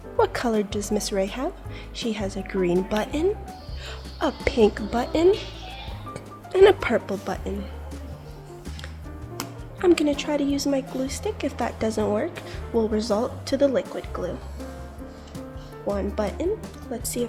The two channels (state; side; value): identical; both; correlation 1.00